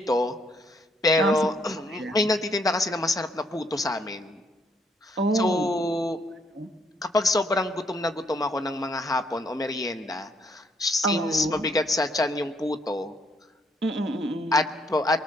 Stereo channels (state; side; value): normal; both; correlation 0.70